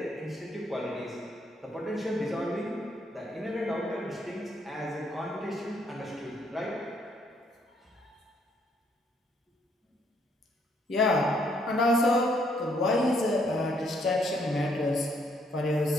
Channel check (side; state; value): both; normal; correlation 0.70